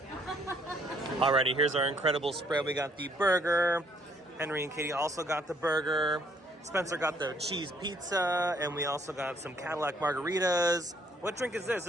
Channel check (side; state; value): both; normal; correlation 0.66